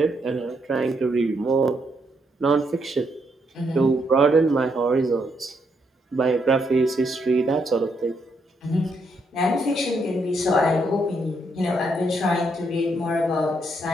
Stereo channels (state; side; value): normal; both; correlation 0.76